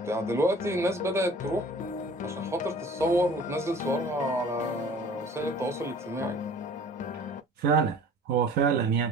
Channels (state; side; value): normal; both; correlation 0.47